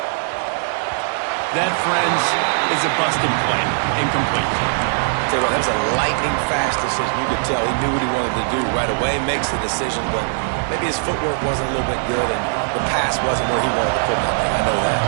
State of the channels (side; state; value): left; silent; 66 dB below the other